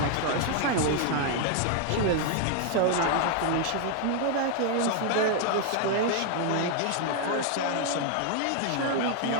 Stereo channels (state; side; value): different; both; correlation 0.00